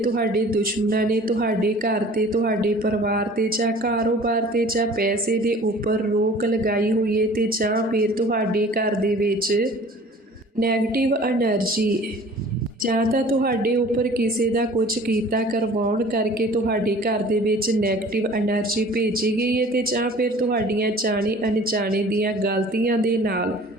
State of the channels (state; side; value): normal; both; correlation 0.47